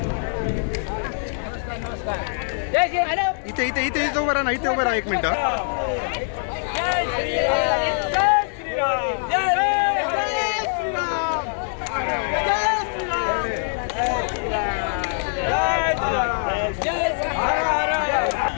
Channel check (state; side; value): silent; right; digital silence